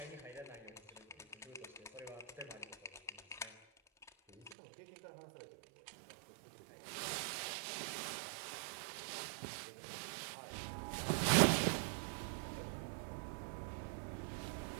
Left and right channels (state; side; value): drops out; left; at 4.5 s